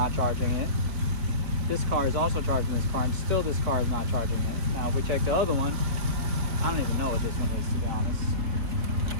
charging it, this car is also charging this car, and still this car is not charging it. Now if we check the other one, I don't even know what this one is, to be honest.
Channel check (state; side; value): late; left; 4.6 ms